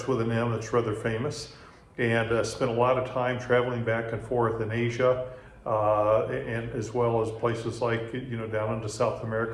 with an M that's rather famous, and spent a lot of time traveling back and forth in Asia, and as well as places like, down into South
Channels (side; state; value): both; identical; correlation 1.00